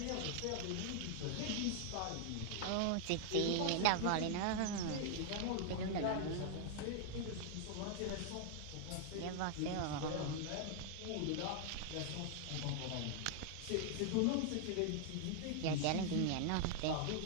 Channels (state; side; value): different; both; correlation 0.00